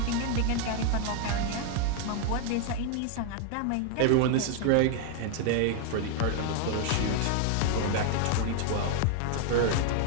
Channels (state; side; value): different; both; correlation 0.00